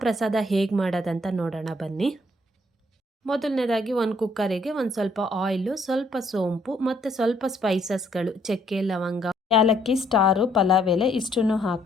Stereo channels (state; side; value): normal; both; correlation 0.67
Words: ಪ್ರಸಾದ ಹೇಗೆ ಮಾಡೋದಂತ ನೋಡೋಣ ಬನ್ನಿ. ಮೊದಲನೇದಾಗಿ ಒಂದು ಕುಕ್ಕರಿಗೆ ಒಂದು ಸ್ವಲ್ಪ ಆಯಿಲು, ಸ್ವಲ್ಪ ಸೋಂಪು ಮತ್ತು ಸ್ವಲ್ಪ ಸ್ಪೈಸಸ್ಗಳು, ಚಕ್ಕೆ, ಲವಂಗ, ಏಲಕ್ಕಿ, ಸ್ಟಾರು, ಪಲಾವ್ ಎಲೆ ಇಷ್ಟನ್ನು